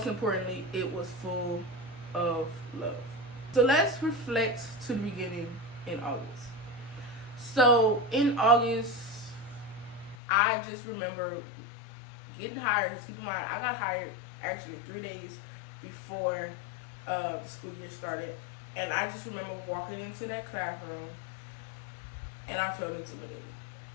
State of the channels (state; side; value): drops out; right; at 10.2 s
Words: importantly, it was full of love. So let's reflect to the beginning in August. So in August, I just remember getting hired. Keep in mind, I got hired actually 3 days before the school year started, and I just remember walking into that classroom and I felt intimidated.